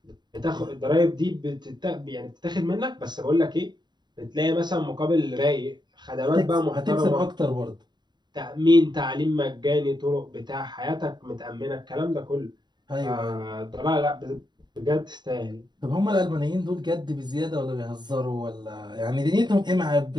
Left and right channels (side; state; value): left; late; 0.21 ms